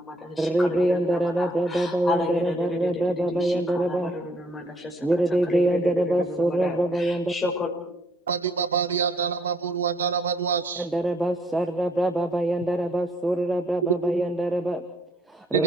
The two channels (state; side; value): normal; both; correlation 0.66